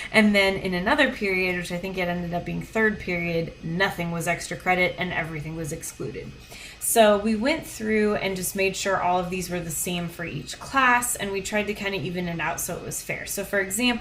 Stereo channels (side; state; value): both; identical; correlation 1.00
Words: And then in another period, which I think it ended up being 3rd period, nothing was extra credit and everything was excluded. So we went through and just made sure all of these were the same for each class, and we tried to kind of even it out so it was fair. So for